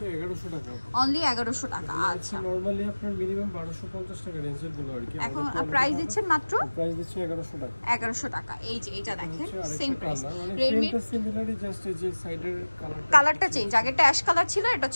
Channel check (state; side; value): inverted; both; correlation -1.00